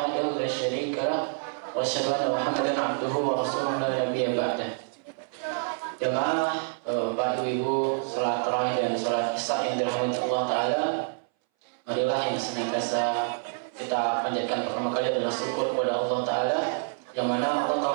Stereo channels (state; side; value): silent; left; 60 dB below the other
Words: la syarika lah wa asyhadu anna Muhammadan abduhu wa rasuluhu la nabiyya ba'dah. Jamaah Bapak Ibu, salat tarawih dan salat isya yang dirahmati Allah Ta'ala, marilah yang senantiasa kita panjatkan pertama kali adalah syukur kepada Allah Ta'ala, yang mana Allah